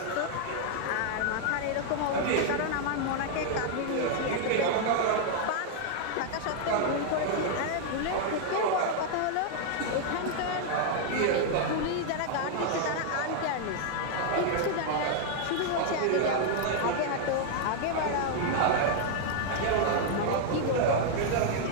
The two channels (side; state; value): both; different; correlation 0.00